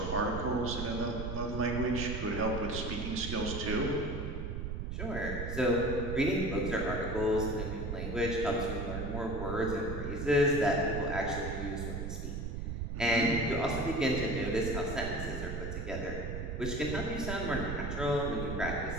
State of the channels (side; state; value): right; noise; rumble, 4 dB below the sound